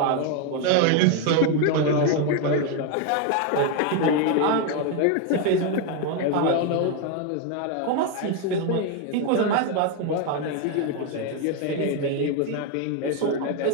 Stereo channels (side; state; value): both; different; correlation 0.01